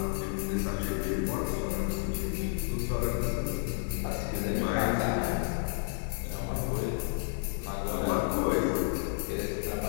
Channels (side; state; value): right; silent; 57 dB below the other